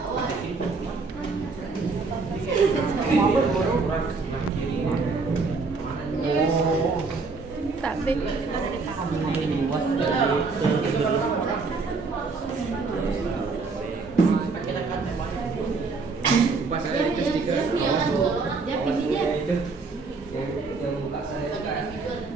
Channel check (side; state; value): left; quieter; 4.2 dB